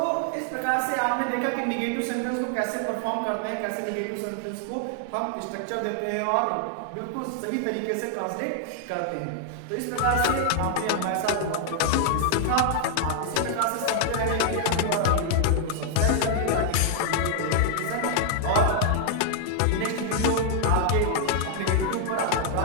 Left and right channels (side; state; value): both; different; correlation 0.00